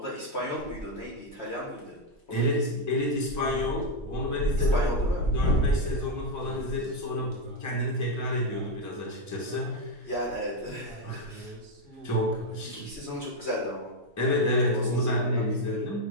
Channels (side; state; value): both; normal; correlation 0.03